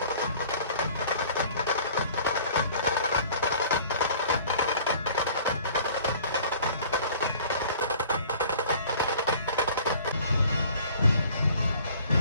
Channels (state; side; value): inverted; both; correlation -0.51